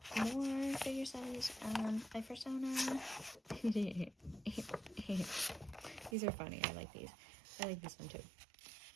More figure studies. My persona. These are funny. I like these. I like this one too.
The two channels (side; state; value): left; drops out; at 6.2 s